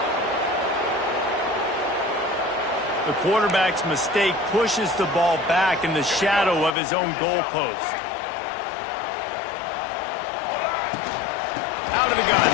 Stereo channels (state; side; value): drops out; right; at 6.7 s